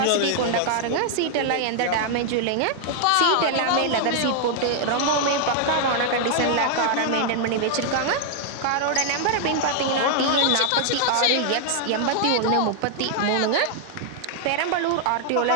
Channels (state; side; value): different; both; correlation 0.00